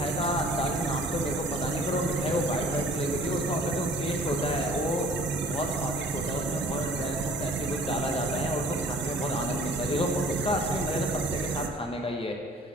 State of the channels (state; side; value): normal; both; correlation 0.51